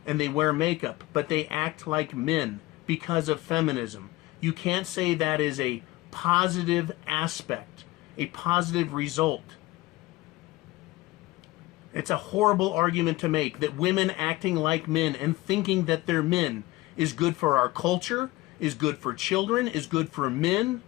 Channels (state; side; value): quieter; right; 19.4 dB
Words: and they wear makeup, but they act like men because of feminism. You can't say that is a positive aspect, a positive result. It's a horrible argument to make that women acting like men and thinking that they're men is good for our culture, is good for children, is good for men.